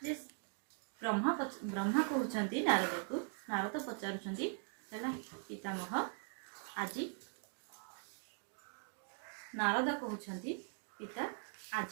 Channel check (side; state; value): left; silent; 50 dB below the other